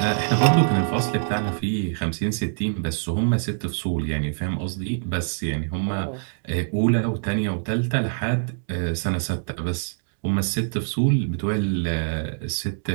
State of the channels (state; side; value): silent; left; digital silence